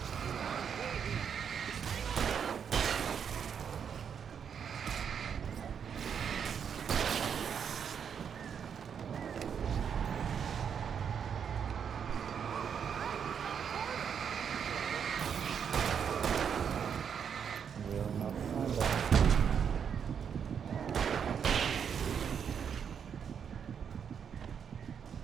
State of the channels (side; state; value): left; quieter; 7.5 dB